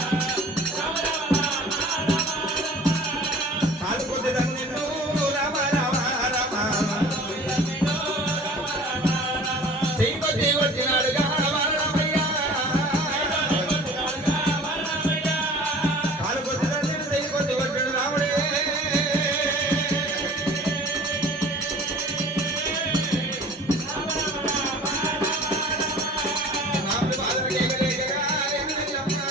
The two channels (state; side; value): normal; both; correlation 0.45